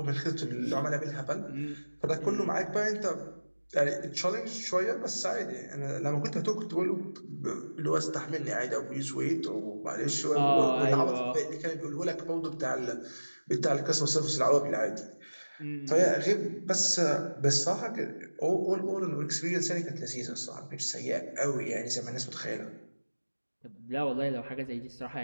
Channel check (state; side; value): inverted; both; correlation -1.00